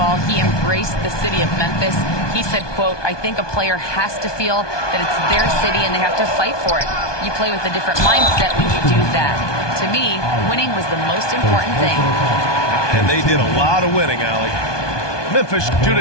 He embraced the city of Memphis. He said, quote, "I think a player has to feel that it's their city and they have to fight for it. You play with a different mindset when you do that. To me, winning was the most important thing." And they did a lot of winning, Allie. Memphis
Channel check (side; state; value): right; late; 1.2 ms